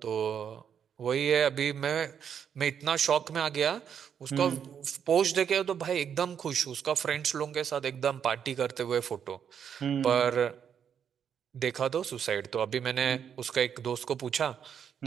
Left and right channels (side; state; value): left; quieter; 8.0 dB